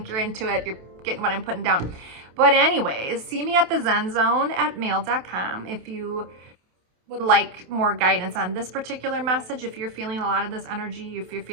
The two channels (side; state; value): left; late; 28 ms